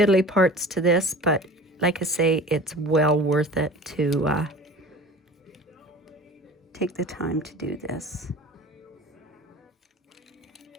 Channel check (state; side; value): normal; both; correlation 0.40